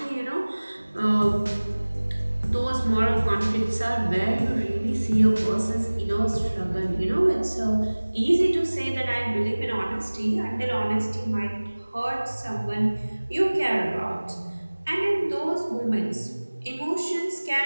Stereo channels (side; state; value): both; inverted; correlation -1.00